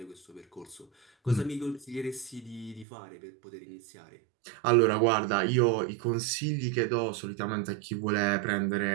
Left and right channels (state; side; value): drops out; left; at 2.9 s